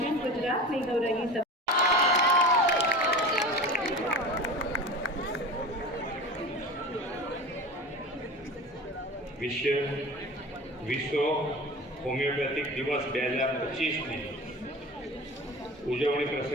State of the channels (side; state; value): both; normal; correlation 0.34